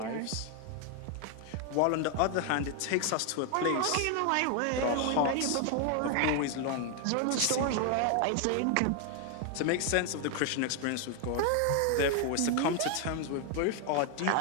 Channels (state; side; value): different; both; correlation 0.00